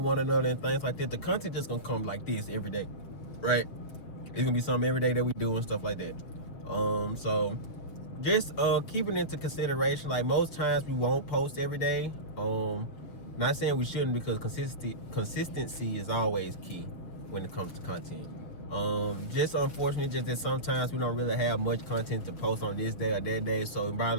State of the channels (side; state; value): right; late; 7.2 ms